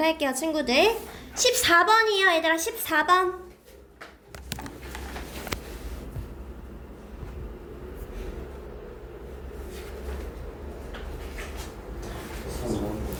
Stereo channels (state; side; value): identical; both; correlation 1.00